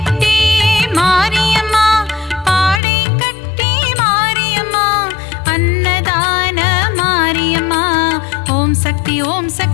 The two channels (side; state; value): right; drops out; at 2.8 s